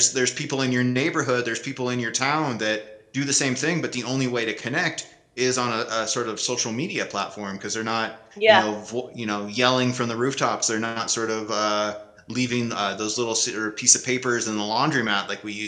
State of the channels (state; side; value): identical; both; correlation 1.00